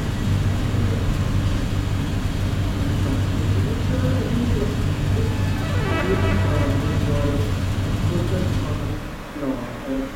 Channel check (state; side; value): identical; both; correlation 1.00